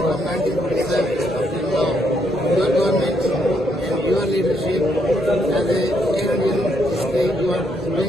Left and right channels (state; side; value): normal; both; correlation 0.74